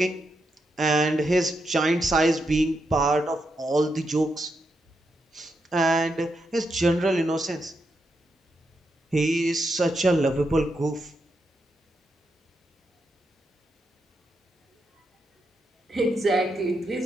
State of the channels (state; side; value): normal; both; correlation 0.83